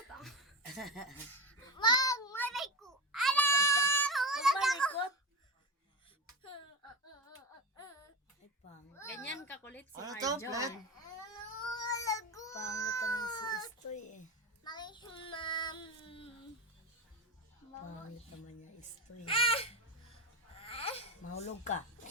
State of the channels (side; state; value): both; normal; correlation 0.22